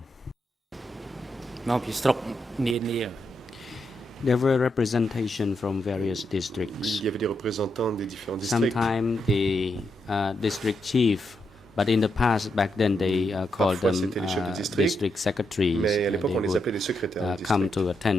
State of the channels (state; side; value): normal; both; correlation 0.82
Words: Non, puis strop ni There were representation from various districts. Il y avait des représentants des différents districts. Sometimes the district chief, but in the past, back then they called Parfois, them c'était les chefs de district, district secretaries. Mais à l'époque, They on les would appelait les secrétaires de come district. to